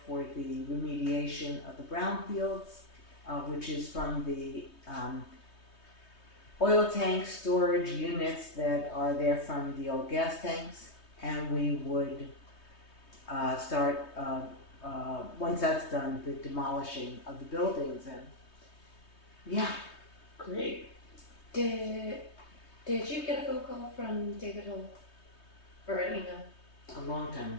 for the remediation of the brownfields, which is from the oil tank storage units that are there from the old gas tanks. And we would start, once that's done, the demolishing of the buildings. And yeah. Great. Did you get a phone call from David Hill or an email? A long time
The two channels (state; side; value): late; right; 3.2 ms